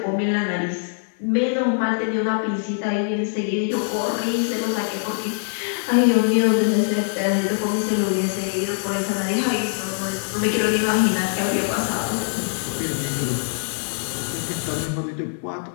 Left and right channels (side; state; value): right; silent; digital silence